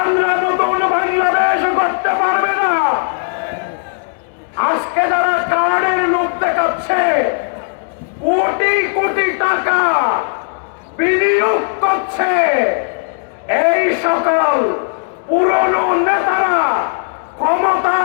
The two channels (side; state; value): right; silent; digital silence